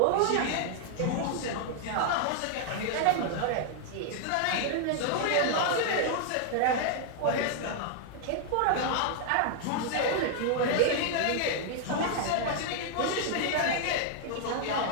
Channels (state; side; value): different; both; correlation -0.01